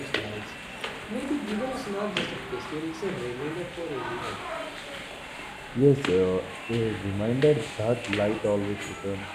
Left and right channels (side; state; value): both; identical; correlation 1.00